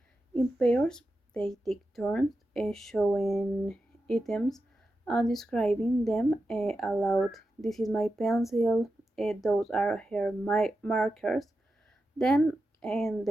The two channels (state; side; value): normal; both; correlation 0.90